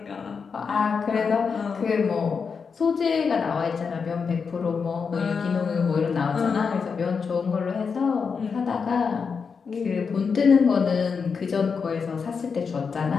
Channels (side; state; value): right; quieter; 5.6 dB